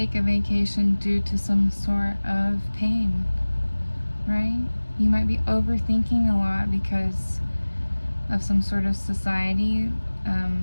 a vacation due to some sort of pain, right? You might be overthinking a lot because of some sort of society,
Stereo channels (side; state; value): both; inverted; correlation -1.00